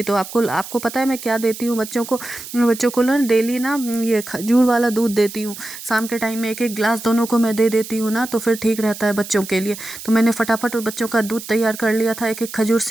तो आपको आपको पता है मैं क्या देती हूँ बच्चों को ना डेली ना ये खजूर वाला दूध देती हूँ। शाम के टाइम में एक एक गिलास दोनों को मैं दे देती हूँ ना, तो फिर ठीक रहता है बच्चों के लिए। तो मैंने फटाफट बच्चों का दूध तैयार कर लिया था। एक एक खजूर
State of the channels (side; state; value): right; noise; hiss, 12 dB below the sound